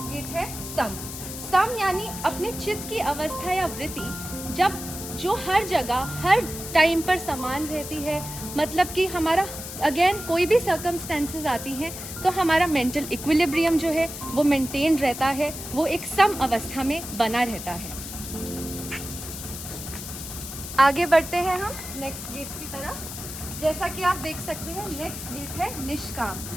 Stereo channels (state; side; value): noise; left; hiss, 9 dB below the sound